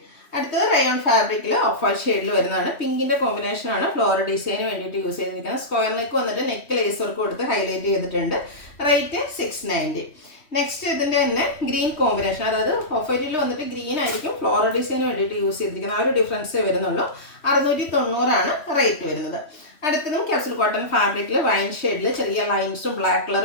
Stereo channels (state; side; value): late; right; 3.2 ms